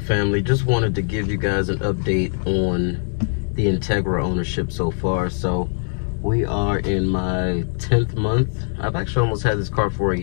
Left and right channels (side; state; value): right; silent; digital silence